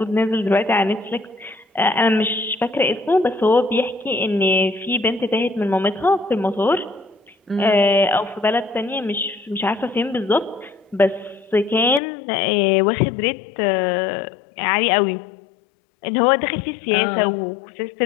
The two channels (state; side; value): drops out; right; at 12.0 s